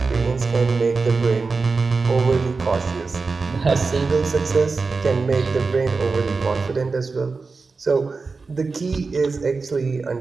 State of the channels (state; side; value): quieter; left; 4.3 dB